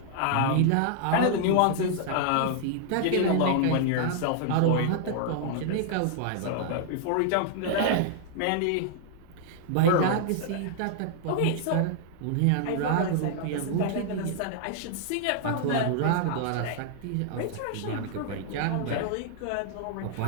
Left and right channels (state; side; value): different; both; correlation -0.01